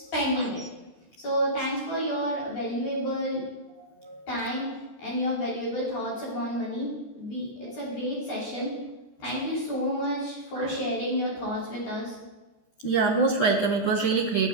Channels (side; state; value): right; late; 13 ms